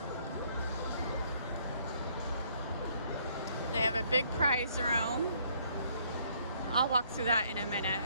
They have a big prize room. I'll walk through that in a minute.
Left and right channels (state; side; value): inverted; both; correlation -0.65